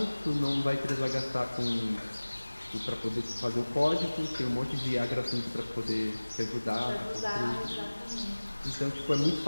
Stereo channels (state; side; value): inverted; both; correlation -1.00